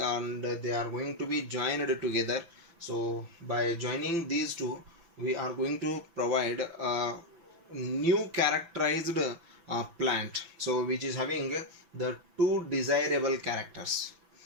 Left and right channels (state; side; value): late; left; 6.0 ms